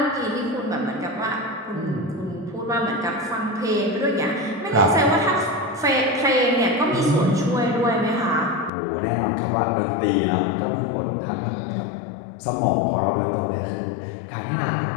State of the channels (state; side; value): drops out; right; at 8.7 s